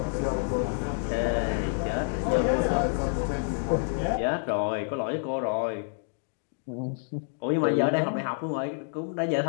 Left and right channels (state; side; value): silent; right; digital silence